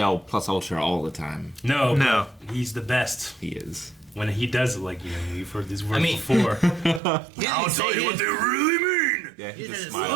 plus ultra all the time. No. No. but he's the best He is. when he does it. Like you've heard these words mean- before. I'll tell you what they really mean. Yeah, He just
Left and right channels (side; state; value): left; drops out; at 7.0 s